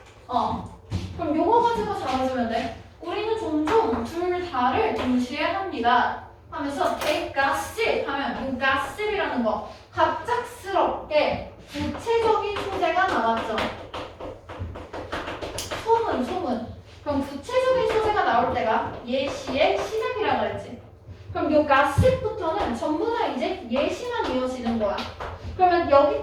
그럼 요거 가지고 잡아주면 돼. 우리는 종종 둘 다를 동시에 합니다. 하면서 take gossip 하면 이 gossip이라는 거 갑작스럽게 구체적인 소재가 나왔죠. 소문. 그럼 구체적인 소재가 나올 때가 예시의 시작이라고 그랬지. 그럼 이 gossip부터는 전부 다 이제 예시만 이어지는 거야. 그러면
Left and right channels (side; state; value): both; identical; correlation 1.00